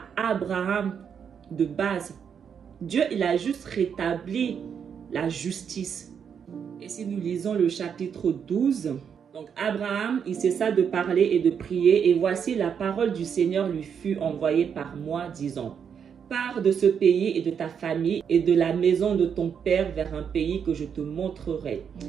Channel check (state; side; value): quieter; left; 7.4 dB